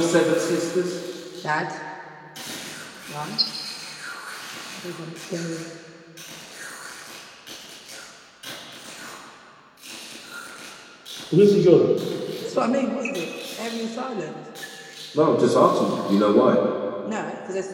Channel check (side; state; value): both; identical; correlation 1.00